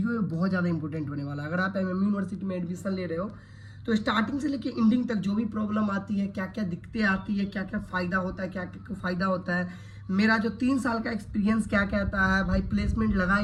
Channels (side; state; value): both; identical; correlation 1.00